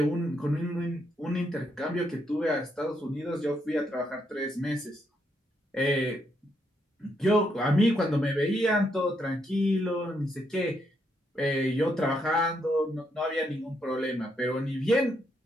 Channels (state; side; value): normal; both; correlation 0.77